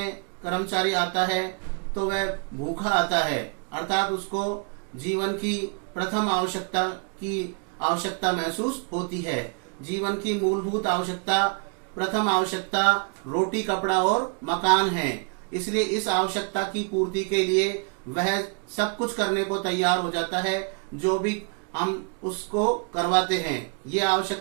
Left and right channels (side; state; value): left; quieter; 37.4 dB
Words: कर्मचारी आता है तो वह भूखा आता है, अर्थात उसको जीवन की प्रथम आवश्यकता महसूस होती है। जीवन की मूलभूत आवश्यकता, प्रथम आवश्यकता रोटी, कपड़ा और मकान है। इसलिए इस आवश्यकता की पूर्ति के लिए वह सब कुछ करने को तैयार हो जाता है जो भी हम उसको करवाते हैं। ये